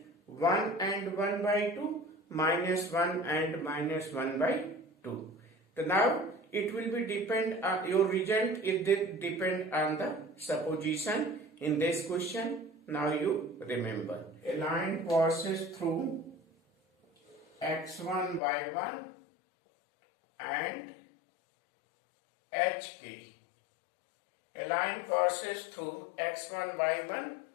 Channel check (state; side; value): drops out; right; at 18.4 s